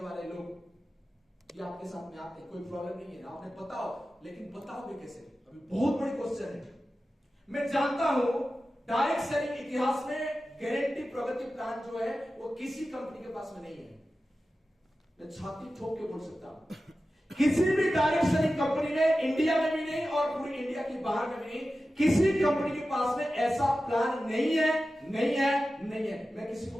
वाले लोग ये आपके साथ में आते हैं, कोई प्रॉब्लम नहीं है, आपने बताओ, लेकिन बताओगे कैसे, अभी बहुत बड़ी क्वेश्चन है। मैं जानता हूं डायरेक्ट सेलिंग इतिहास में गारंटी प्रगति प्लान जो है वो किसी कंपनी के पास में नहीं है। मैं छाती ठोक के बोल सकता हूं, किसी भी डायरेक्ट सेलिंग कंपनी में, इंडिया में भी नहीं और पूरी इंडिया के बाहर में भी नहीं, किसी कंपनी के पास में ऐसा प्लान नहीं है, नहीं है, नहीं है। मैं किसी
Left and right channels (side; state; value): both; normal; correlation 0.94